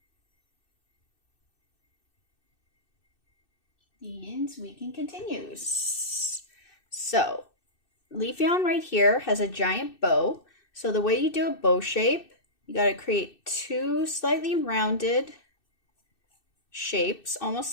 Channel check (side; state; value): right; late; 2.6 ms